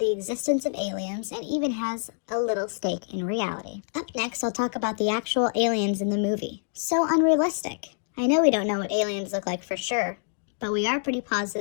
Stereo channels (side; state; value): right; silent; digital silence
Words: existence of aliens and even has a little stake in reality. Up next, I'll talk about the actual aliens in the movie. So unrealistic. I know we don't know what aliens look like for sure, but we are pretty